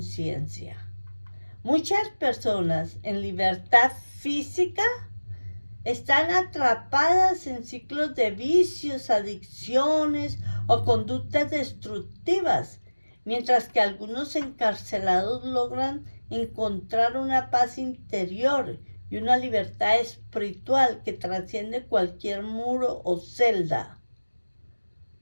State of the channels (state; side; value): inverted; both; correlation -1.00